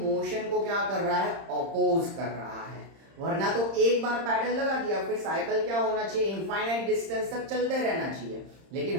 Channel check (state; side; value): late; left; 30 ms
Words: को क्या कर रहा है, ऑपोज कर रहा है। वरना तो एक बार पैडल लगा दिया फिर साइकिल क्या होना चाहिए, इनफाइनाइट डिस्टेंस तक चलते रहना चाहिए। लेकिन